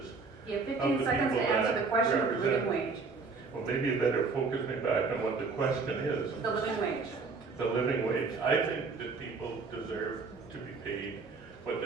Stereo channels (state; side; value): quieter; left; 4.4 dB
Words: You have 15 seconds to answer the question of the living wage. Well, maybe you better focus me back on what the question is. The living wage. The living wage. I think that people deserve to be paid what